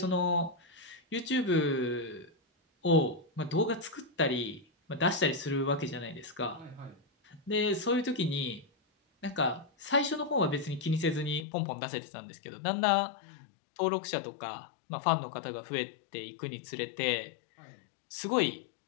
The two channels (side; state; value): right; drops out; at 11.5 s